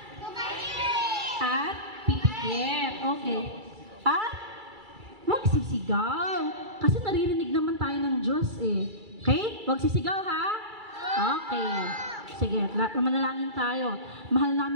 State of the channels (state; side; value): late; left; 2.3 ms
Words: At pipikit. Okay. At huwag sisigaw. Kasi naririnig naman tayo ng Diyos eh. Okay? Huwag sisigaw ha? Okay. Sige, manalangin tayo. Mahal